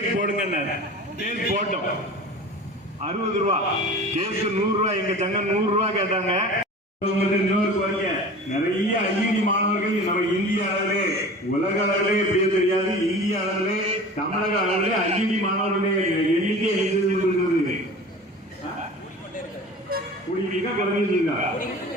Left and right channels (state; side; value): normal; both; correlation 0.38